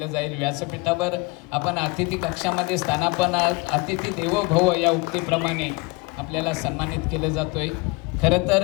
जाईल. व्यासपीठावर आपण अतिथी कक्षामध्ये स्थानापन्न, अतिथी देवो भव या उक्तीप्रमाणे आपल्याला सन्मानित केलं जातोय. खरं तर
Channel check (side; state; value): right; quieter; 26.7 dB